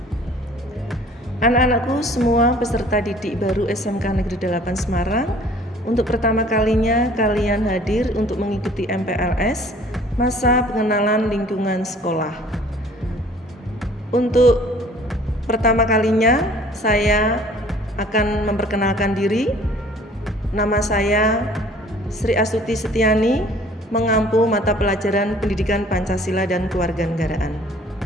Anak-anakku semua peserta didik baru SMK Negeri 8 Semarang, untuk pertama kalinya kalian hadir untuk mengikuti MPLS, masa pengenalan lingkungan sekolah. Untuk pertama kalinya saya akan memperkenalkan diri. Nama saya Sri Astuti Setiani, mengampu mata pelajaran Pendidikan Pancasila dan Kewarganegaraan.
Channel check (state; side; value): normal; both; correlation 0.53